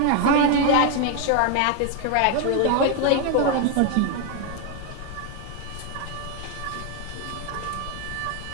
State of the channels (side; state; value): both; different; correlation 0.01